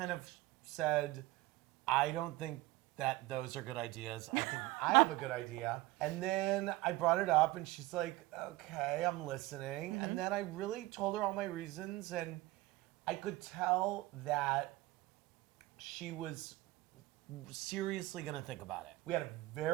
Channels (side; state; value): left; quieter; 18.7 dB